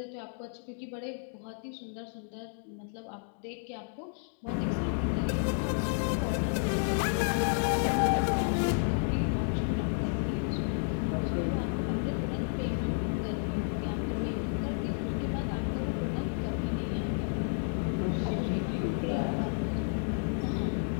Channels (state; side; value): silent; right; 57 dB below the other